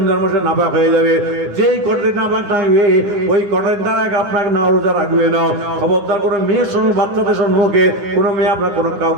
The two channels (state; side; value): late; left; 9.8 ms